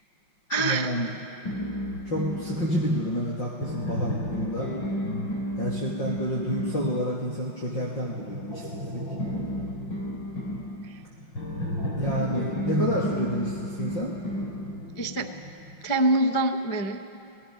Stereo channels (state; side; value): late; right; 5.6 ms